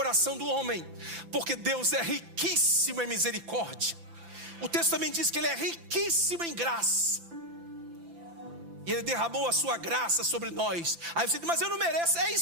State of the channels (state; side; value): late; left; 5.9 ms